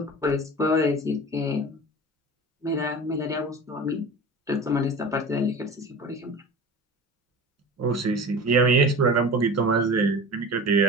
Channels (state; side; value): normal; both; correlation 0.35